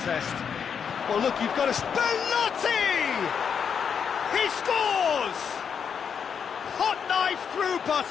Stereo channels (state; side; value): quieter; right; 7.1 dB